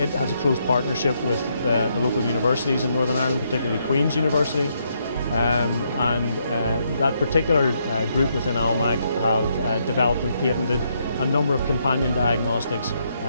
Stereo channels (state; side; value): inverted; both; correlation -0.76